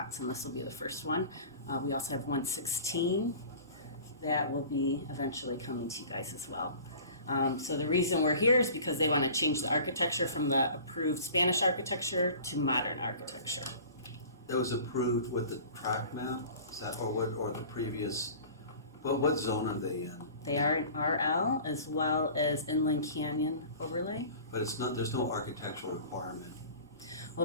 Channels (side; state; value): both; inverted; correlation -0.43